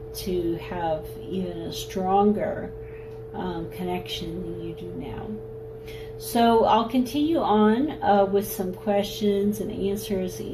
to have even a stronger connection than you do now. So I'll continue on with some questions and answers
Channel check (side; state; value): both; identical; correlation 1.00